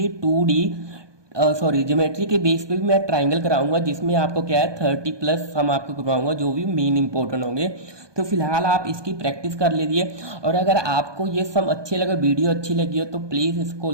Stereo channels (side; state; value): left; late; 1.2 ms